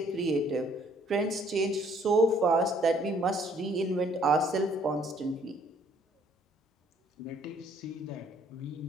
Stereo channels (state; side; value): normal; both; correlation 0.63